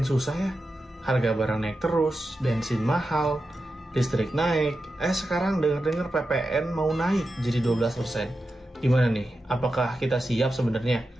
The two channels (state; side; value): normal; both; correlation 0.90